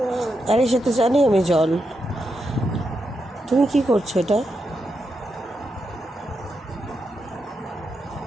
আরে সে তো জানি আমি জল, তুমি কি করছো এটা?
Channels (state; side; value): normal; both; correlation 0.85